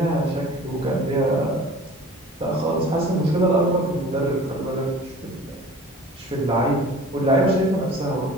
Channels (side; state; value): both; normal; correlation 0.44